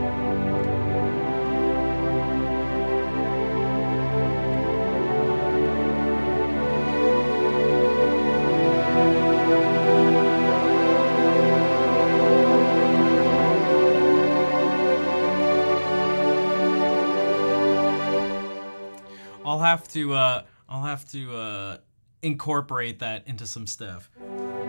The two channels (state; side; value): inverted; both; correlation -1.00